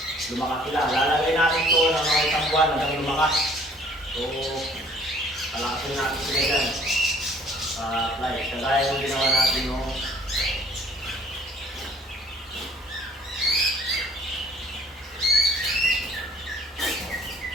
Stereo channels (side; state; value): both; normal; correlation 0.56